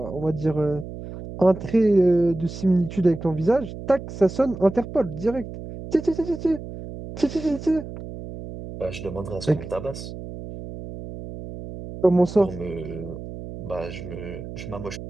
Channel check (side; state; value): right; noise; hum, 11 dB below the sound